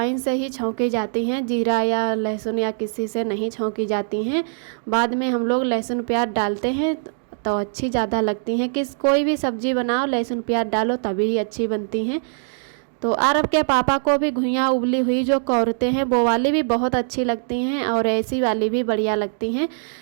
से ही छौंकी जाती हैं, जीरा या लहसुन या किसी से नहीं छौंकी जाती हैं। बाद में हम लोग लहसुन प्याज डालते हैं तो अच्छी ज़्यादा लगती हैं। कोई भी सब्ज़ी बनाओ लहसुन प्याज डालो तभी ही अच्छी बनती हैं। तो आरब के पापा को भी घुइयाँ उबली हुई जो कौरते हैं वो वाली भी बहुत अच्छी लगती हैं, और ऐसी वाली भी बढ़िया लगती हैं।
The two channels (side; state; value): left; silent; digital silence